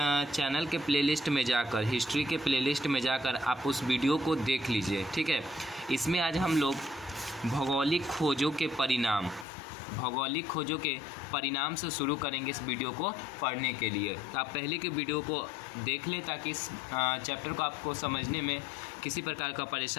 चैनल के प्लेलिस्ट में जाकर, हिस्ट्री के प्लेलिस्ट में जाकर आप उस वीडियो को देख लीजिए, ठीक है। इसमें आज हम लोग भौगोलिक खोजों के परिणाम से शुरू करेंगे इस वीडियो को पढ़ने के लिए। तो आप पहले के वीडियो को देख लें ताकि इस चैप्टर को आपको समझने में किसी प्रकार का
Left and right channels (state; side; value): drops out; right; at 9.5 s